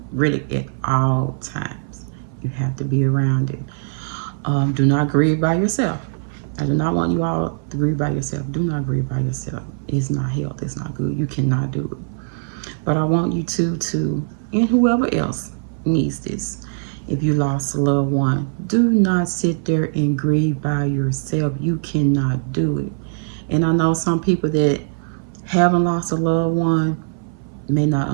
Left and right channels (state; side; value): silent; left; 59 dB below the other